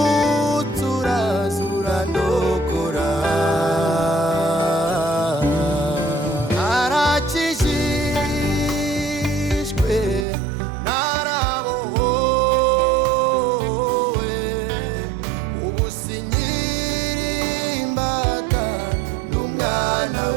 uraza urandokora. Narakijijwe narabohowe, ubu sinkiri imbata n'umwana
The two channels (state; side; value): drops out; left; at 10.2 s